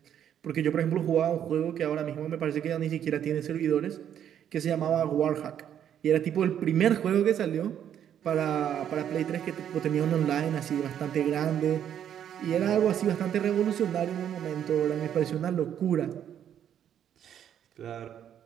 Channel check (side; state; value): left; quieter; 9.7 dB